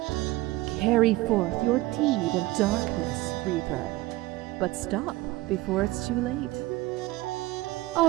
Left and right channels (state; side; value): quieter; left; 18.9 dB